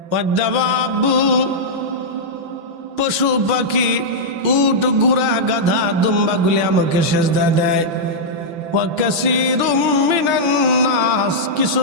ওয়াদ্দাবাবু পশু পাখি, উট গুড়া গাধা দুম্বাগুলি আমাকে সেজদা দেয়। ওয়া কাসীরুম মিনান নাস, কিছু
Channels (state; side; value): late; left; 6.0 ms